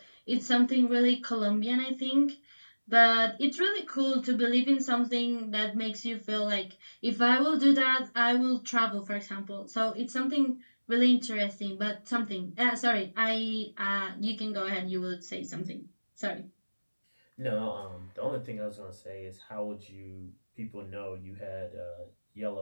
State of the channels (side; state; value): both; inverted; correlation -1.00